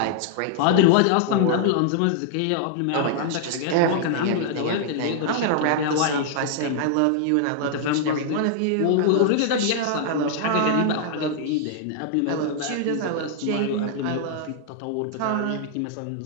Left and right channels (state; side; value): different; both; correlation -0.01